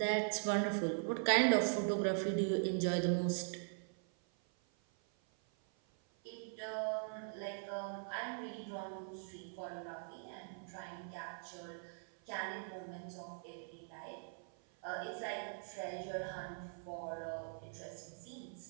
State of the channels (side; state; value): left; silent; 50 dB below the other